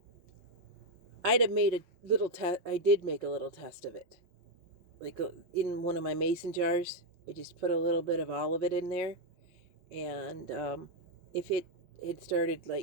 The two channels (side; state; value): left; late; 5.6 ms